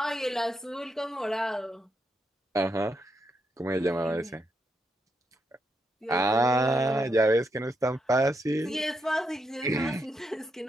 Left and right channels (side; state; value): both; normal; correlation 0.81